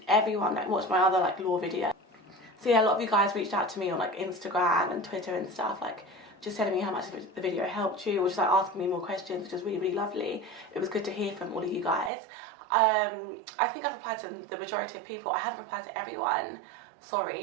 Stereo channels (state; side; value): drops out; left; at 12.1 s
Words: everyone that watched my other like law video. So yeah, a lot of you guys reached out to me on like Instagram and Twitter and stuff, like just telling me how much the video helped you, or just like asking me more questions, which was really, really lovely. It was good to hear from all of you guys. I think I've replied to the majority of people. I haven't replied to everyone,